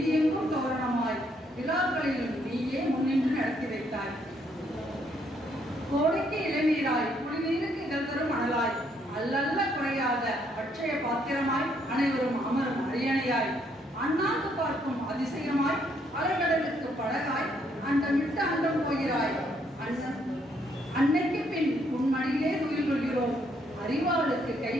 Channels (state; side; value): normal; both; correlation 0.71